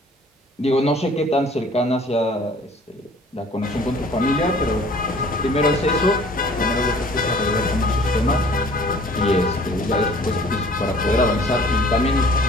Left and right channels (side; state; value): both; normal; correlation 0.52